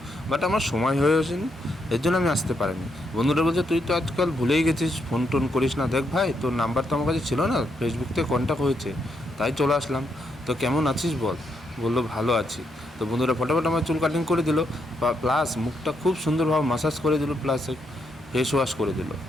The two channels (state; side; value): normal; both; correlation 0.79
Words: বাট আমার সময় হয়ে ওঠেনি, এর জন্য আমি আসতে পারিনি। বন্ধুটা বলছে, তুই তো আজকাল ভুলেই গেছিস, ফোন টোন করিস না। দেখ ভাই, তোর নাম্বার তো আমার কাছে ছিল না, ফেসবুক থেকে কন্ট্যাক্ট হয়েছে, তাই চলে আসলাম। তো কেমন আছিস বল? বললো, ভালো আছি। তো বন্ধুরা ফটাফট আমার চুল কাটিং করে দিল, প্লাস মুখটা খুব সুন্দরভাবে মাসাজ করে দিল, প্লাস ফেস ওয়াশ করে দিল।